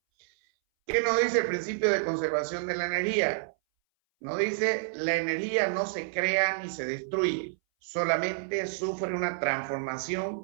¿Qué nos dice el principio de conservación de la energía? Nos dice, la energía no se crea ni se destruye, solamente sufre una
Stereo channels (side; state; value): left; silent; 59 dB below the other